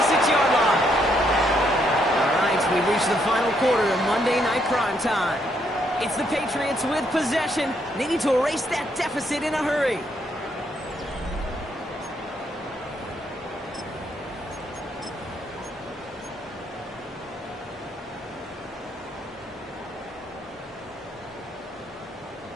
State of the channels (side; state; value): both; normal; correlation 0.74